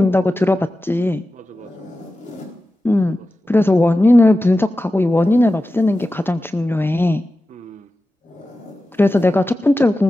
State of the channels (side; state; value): both; normal; correlation 0.93